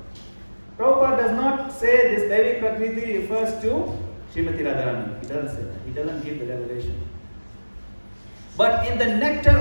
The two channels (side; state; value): both; inverted; correlation -1.00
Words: Prabhupada does not say this Devi Prakriti refers to Srimati Radharani. He doesn't say that. He doesn't give the revelation. But in the Nectar